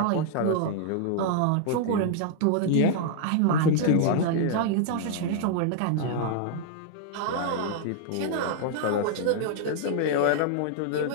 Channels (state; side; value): different; both; correlation -0.01